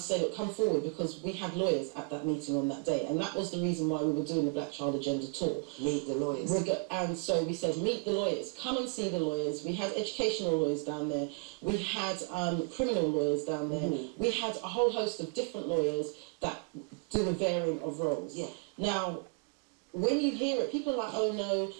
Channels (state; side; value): quieter; left; 33.1 dB